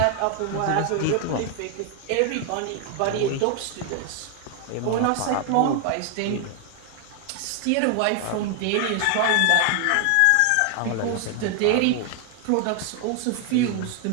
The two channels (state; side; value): different; both; correlation 0.00